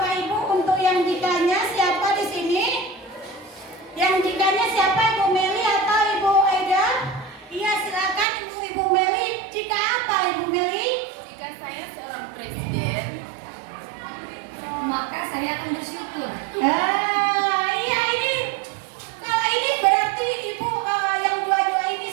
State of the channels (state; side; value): drops out; left; at 8.2 s